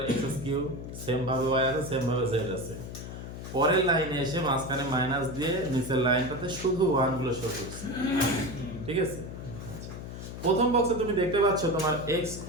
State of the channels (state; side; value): noise; left; hum, 10 dB below the sound